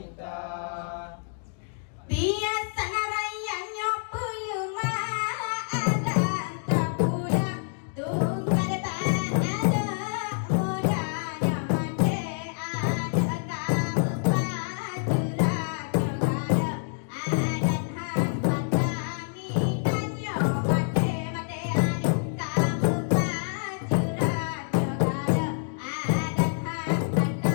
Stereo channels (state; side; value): silent; right; digital silence